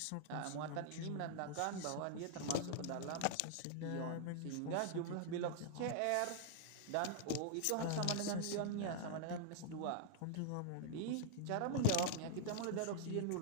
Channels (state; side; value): different; both; correlation -0.01